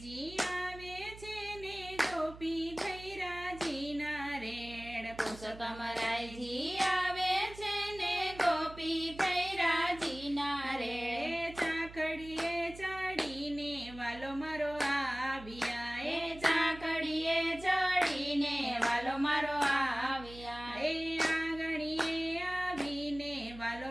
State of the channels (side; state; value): right; noise; hum, 16 dB below the sound